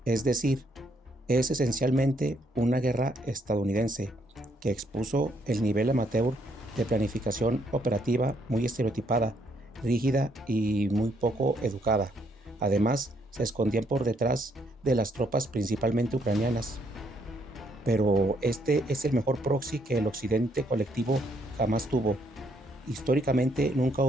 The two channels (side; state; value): both; normal; correlation 0.71